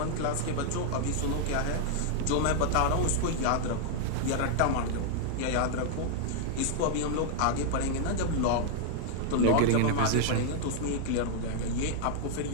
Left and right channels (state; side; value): different; both; correlation 0.00